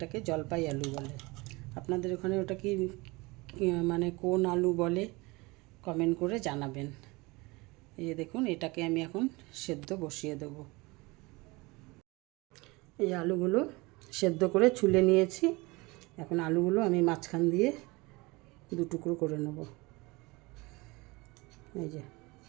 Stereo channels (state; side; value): quieter; left; 24.1 dB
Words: জলপাই আলু বলে। আপনাদের ওখানে ওটা কি মানে কোন আলু বলে কমেন্ট করে জানাবেন। এই যে দেখুন, এটাকে আমি এখন সেদ্ধ বসিয়ে দেব। এই আলুগুলো সেদ্ধ করে ছুলে নিয়েছি। এখন আলুগুলো আমি মাঝখান দিয়ে দু টুকরো করে নেব। এই যে